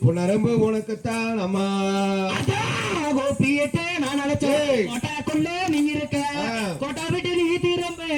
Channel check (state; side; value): identical; both; correlation 1.00